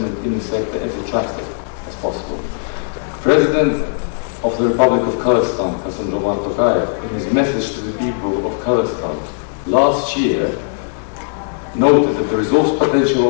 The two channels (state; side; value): silent; right; digital silence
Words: in the sector as attractive as possible. President of the Republic of Kazakhstan, in his message to the people of Kazakhstan last year, noted that the resource potential